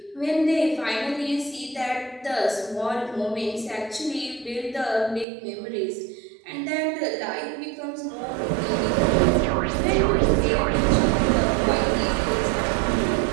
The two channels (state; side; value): drops out; left; at 5.2 s